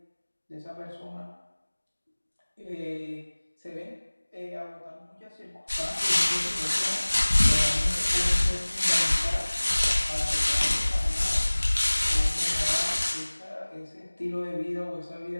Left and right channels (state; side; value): inverted; both; correlation -1.00